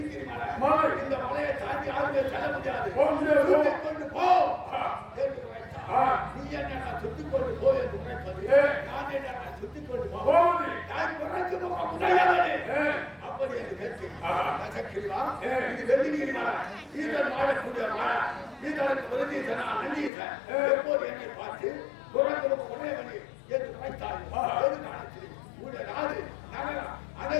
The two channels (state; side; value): drops out; right; at 20.1 s